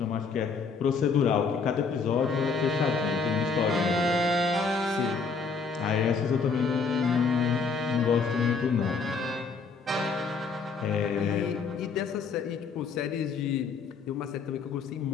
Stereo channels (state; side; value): quieter; right; 4.9 dB